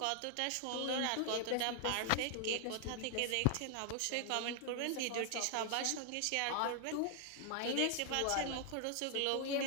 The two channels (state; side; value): different; both; correlation 0.00